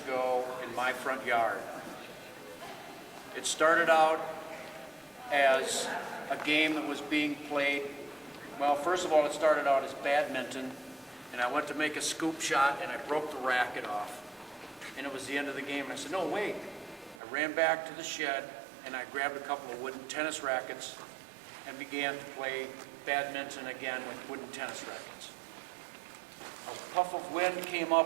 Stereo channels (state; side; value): drops out; left; at 17.2 s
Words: in my front yard. It started out as a game that was being played. Well, first of all, it started out as badminton, and I went to make a scoop shot and I broke the racket off. And it was the end of the game, and I said, no, wait. I ran back to the shed and I grabbed a couple of wooden tennis rackets and began to play badminton again with wooden tennis rackets. A puff of wind came